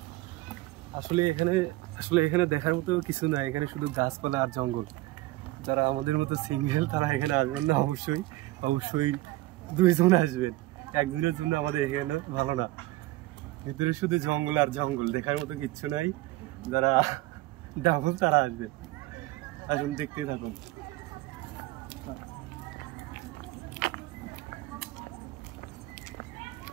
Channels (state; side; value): quieter; left; 18.8 dB